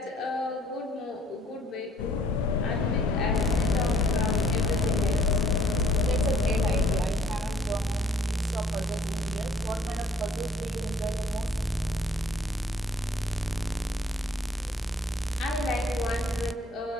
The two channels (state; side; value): normal; both; correlation 0.60